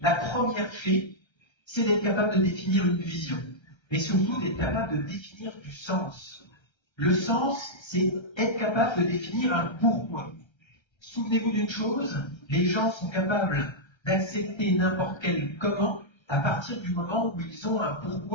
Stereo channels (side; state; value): right; late; 1.3 ms